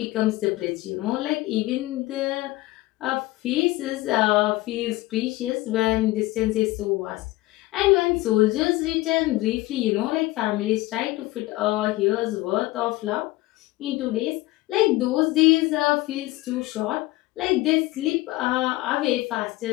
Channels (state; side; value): quieter; right; 18.8 dB